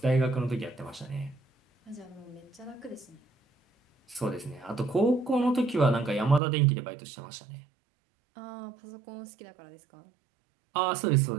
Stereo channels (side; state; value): left; drops out; at 6.4 s